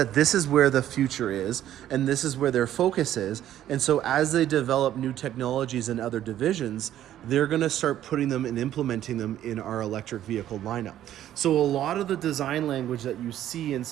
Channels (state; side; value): quieter; left; 12.0 dB